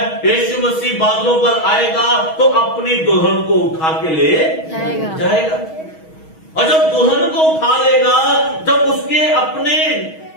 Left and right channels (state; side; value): late; right; 6.3 ms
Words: यीशु मसीह बादलों पर आएगा तो अपनी दुल्हन को उठा के ले जाएगा। और जब दुल्हन को उठा लेगा, जब उसके अपने